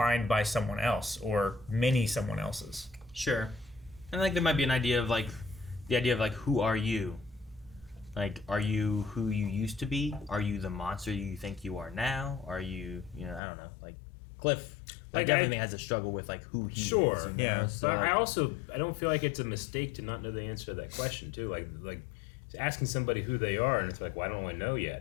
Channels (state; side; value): drops out; right; at 13.4 s